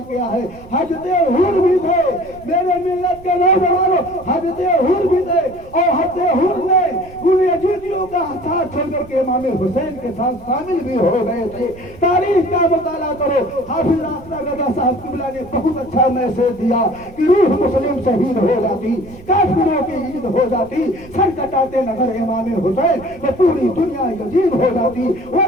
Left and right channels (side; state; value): right; noise; rumble, 20 dB below the sound